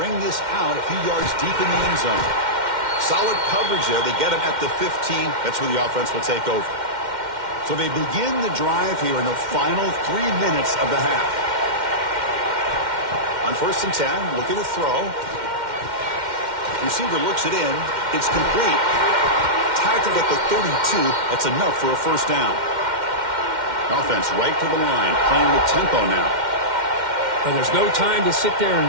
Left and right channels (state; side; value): late; left; 2.1 ms